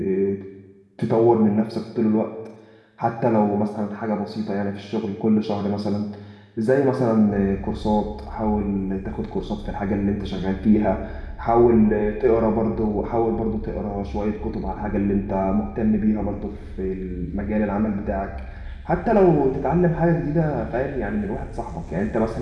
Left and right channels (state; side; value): identical; both; correlation 1.00